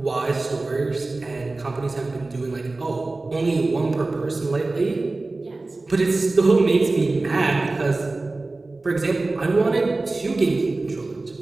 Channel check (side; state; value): left; quieter; 3.3 dB